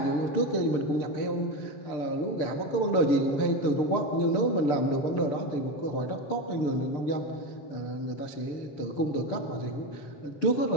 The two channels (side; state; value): right; late; 6.8 ms